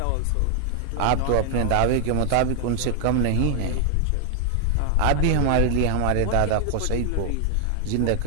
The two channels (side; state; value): both; different; correlation 0.00